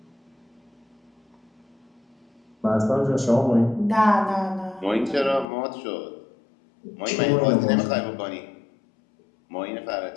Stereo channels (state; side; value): drops out; right; at 5.5 s